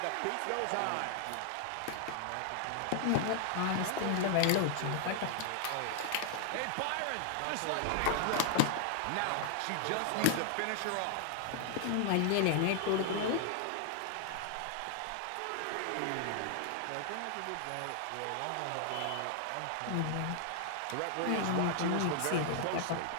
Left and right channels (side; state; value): both; different; correlation 0.00